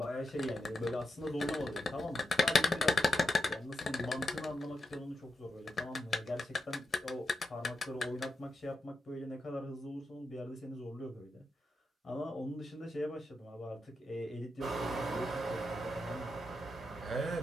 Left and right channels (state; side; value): normal; both; correlation 0.86